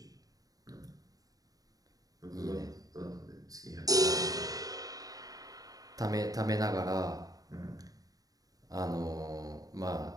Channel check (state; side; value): late; left; 0.18 ms